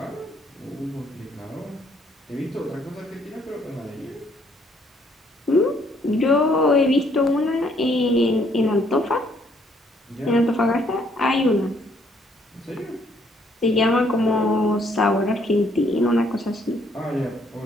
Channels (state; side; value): normal; both; correlation 0.67